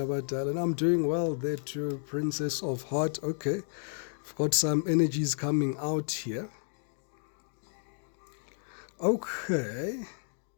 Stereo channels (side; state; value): right; silent; 57 dB below the other